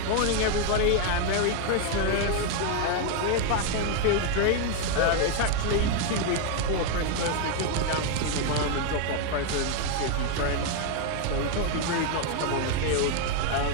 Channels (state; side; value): different; both; correlation 0.01